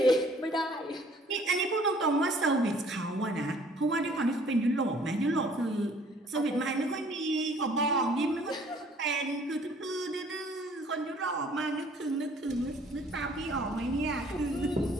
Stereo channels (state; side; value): normal; both; correlation 0.57